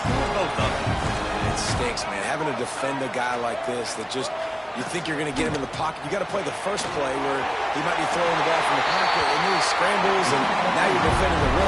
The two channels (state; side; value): identical; both; correlation 1.00